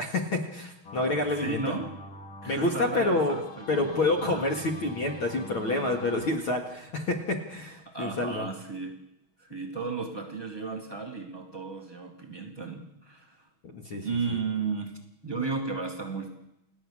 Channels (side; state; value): right; late; 6.3 ms